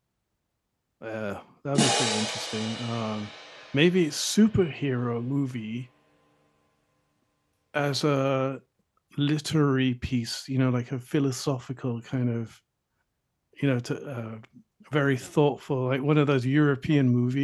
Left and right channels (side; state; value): both; identical; correlation 1.00